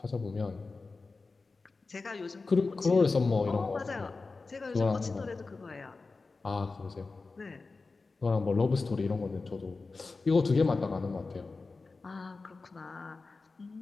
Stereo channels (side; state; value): right; quieter; 3.9 dB